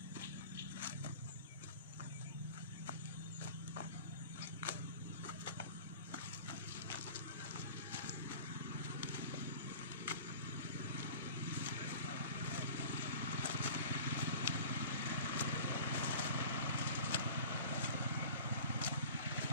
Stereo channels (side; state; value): both; inverted; correlation -0.41